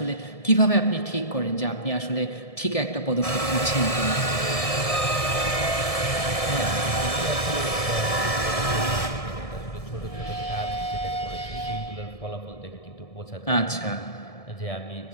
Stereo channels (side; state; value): right; late; 1.7 ms